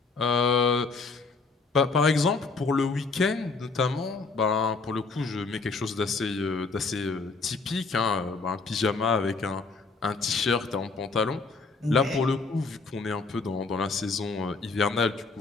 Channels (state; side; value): quieter; right; 4.2 dB